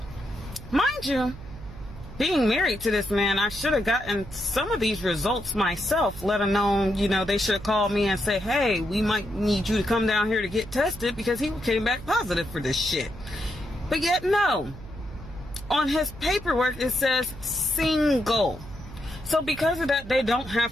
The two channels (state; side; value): noise; right; hum, 14 dB below the sound